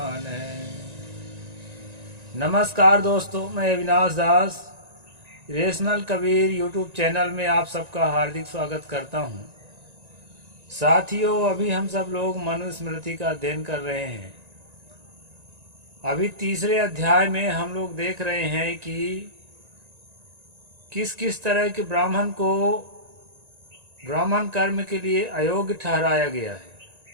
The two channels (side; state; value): left; late; 1.9 ms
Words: नमस्कार दोस्तों, मैं अविनाश दास रेशनल कबीर यूट्यूब चैनल में आप सबका हार्दिक स्वागत करता हूं। साथियों, अभी हम सब लोग मनुस्मृति का अध्ययन कर रहे हैं। अभी तीसरे अध्याय में हम लोग देख रहे हैं कि किस किस तरह के ब्राह्मण को ब्राह्मण कर्म के लिए अयोग्य ठहराया गया है।